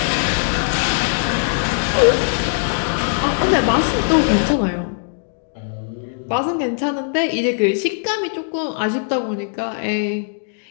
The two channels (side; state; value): right; silent; digital silence